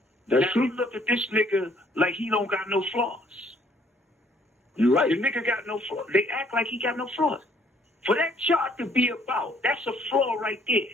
That's now true. You look at this nigga like he don't got no flaws. You're right. The nigga got no flaws. They act like he got no flaws. For that chart to be about, that's a flaw right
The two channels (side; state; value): both; normal; correlation 0.63